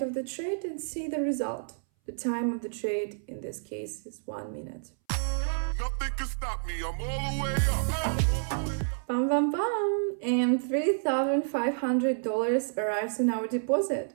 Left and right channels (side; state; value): left; silent; 58 dB below the other